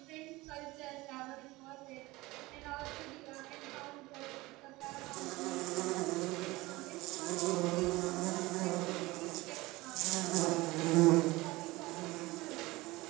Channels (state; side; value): quieter; left; 20.7 dB